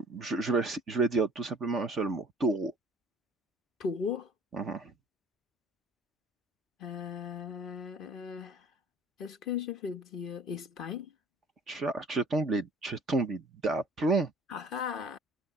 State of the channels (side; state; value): both; normal; correlation 0.51